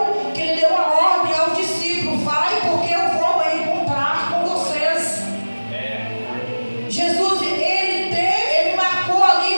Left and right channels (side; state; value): both; inverted; correlation -1.00